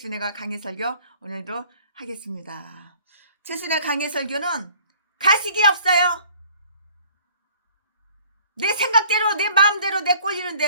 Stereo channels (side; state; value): both; inverted; correlation -0.54